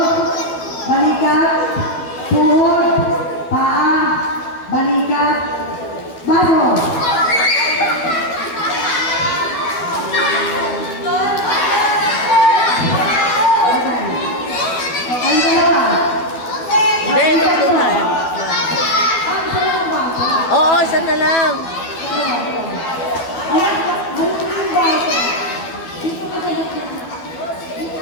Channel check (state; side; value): late; right; 12 ms